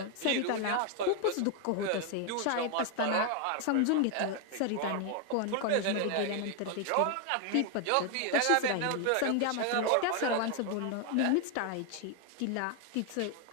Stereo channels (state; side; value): different; both; correlation 0.01